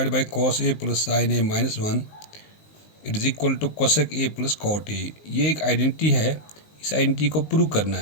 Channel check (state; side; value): late; right; 19 ms